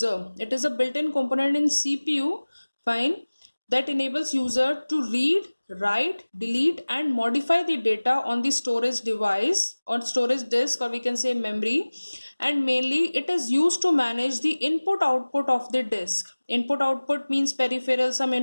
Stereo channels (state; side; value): inverted; both; correlation -1.00